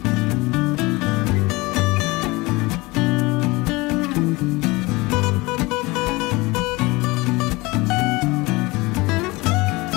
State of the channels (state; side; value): quieter; right; 22.9 dB